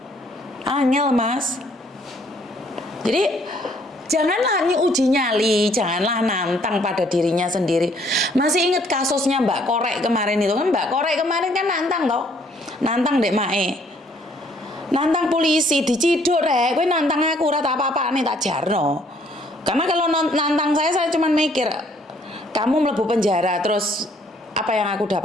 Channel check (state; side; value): normal; both; correlation 0.63